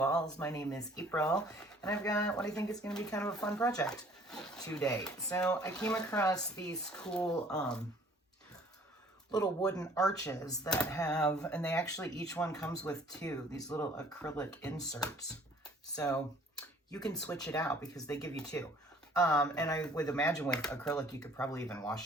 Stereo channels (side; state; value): both; normal; correlation 0.55